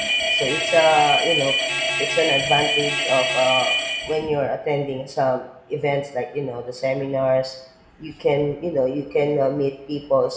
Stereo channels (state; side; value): identical; both; correlation 1.00